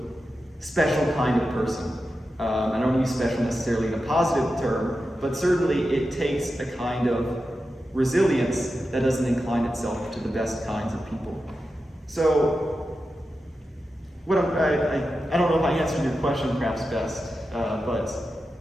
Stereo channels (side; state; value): both; normal; correlation 0.91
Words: special kind of person. I don't use special necessarily in a positive term, but certainly it takes a kind of resilience that doesn't incline itself to the best kinds of people. So, I don't know if I answered your question perhaps best, but